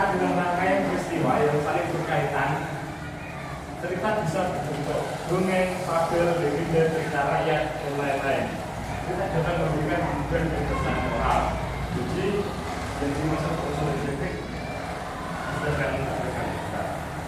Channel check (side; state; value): both; identical; correlation 1.00